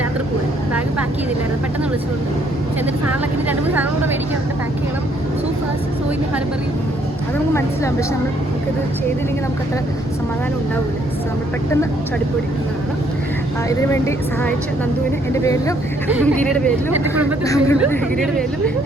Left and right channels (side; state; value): both; normal; correlation 0.67